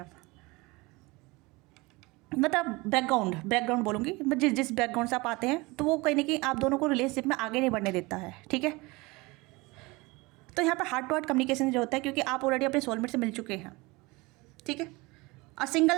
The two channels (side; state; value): left; quieter; 23.8 dB